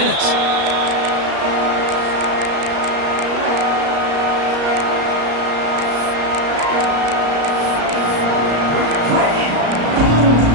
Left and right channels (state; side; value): late; left; 34 ms